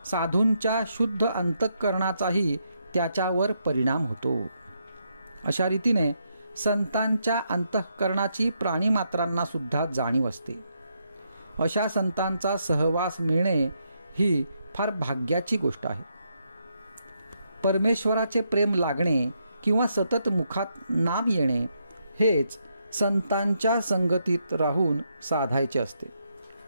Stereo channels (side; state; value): both; inverted; correlation -0.79